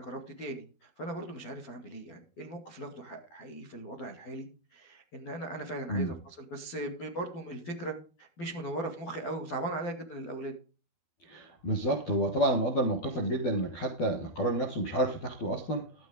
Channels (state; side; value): late; right; 12 ms